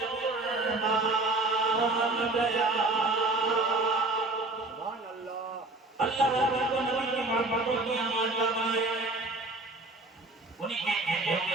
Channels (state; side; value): quieter; left; 3.0 dB